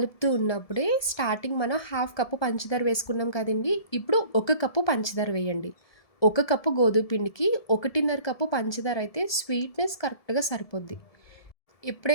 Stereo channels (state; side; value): late; right; 1.7 ms